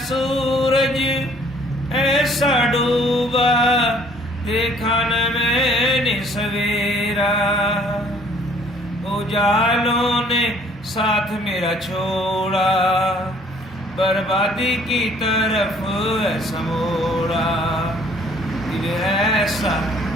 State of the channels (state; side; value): normal; both; correlation 0.58